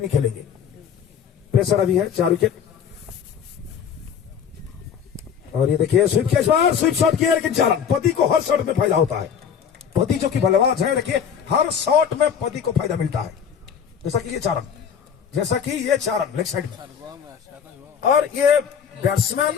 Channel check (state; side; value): quieter; right; 7.6 dB